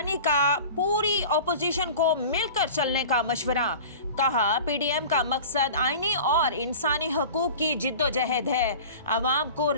का पूरी अपोजिशन को मिलकर चलने का मशवरा। कहा, पीडीएम का मकसद आईनी और इंसानी हकूक की जिद्दोजहद है। आवाम को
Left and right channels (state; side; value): inverted; both; correlation -0.38